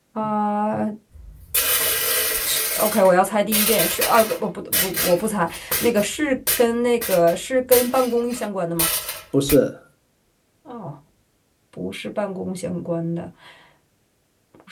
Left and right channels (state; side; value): identical; both; correlation 1.00